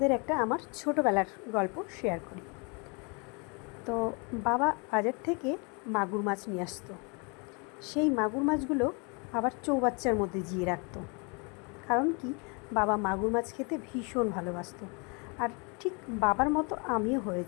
একটা আমার ছোটোবেলার গল্প শেয়ার করি। তো বাবা বাজার থেকে মাগুর মাছ নিয়ে আসতো। সেই মাগুর মাছগুলো আবার চৌবাচ্চার মধ্যে জিয়ে রাখতো। কারণ কি, বাবা মাগুর মাছ খেতে ভীষণ ভালোবাসতো। আর ঠিক বাবার মতো আমিও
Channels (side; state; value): right; quieter; 32.8 dB